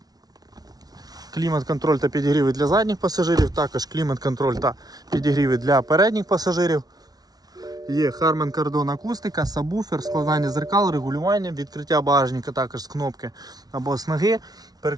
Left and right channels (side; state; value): left; late; 0.19 ms